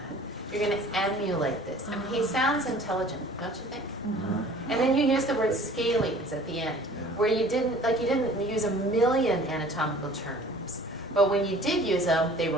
You're going to emulate this. And he sounds intelligent, don't you think? Mm-hmm. And then you use the word scalings at the end, where you didn't use a million anatomical terms, but when you did use them, they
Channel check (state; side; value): normal; both; correlation 0.49